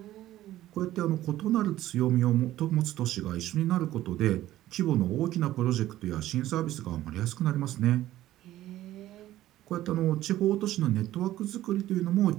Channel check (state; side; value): quieter; left; 14.4 dB